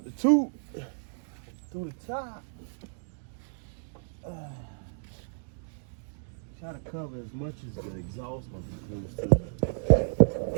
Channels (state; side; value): silent; left; digital silence